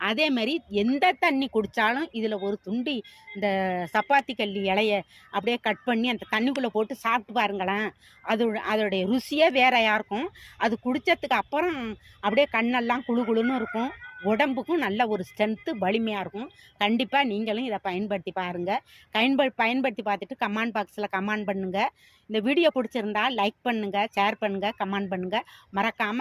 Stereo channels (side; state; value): both; identical; correlation 1.00